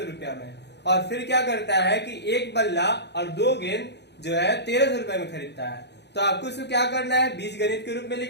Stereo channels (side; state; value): right; late; 0.50 ms